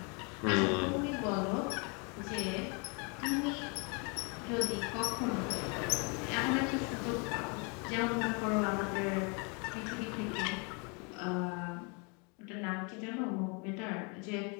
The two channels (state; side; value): quieter; right; 33.6 dB